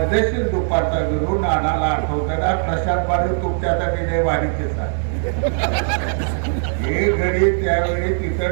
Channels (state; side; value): silent; left; digital silence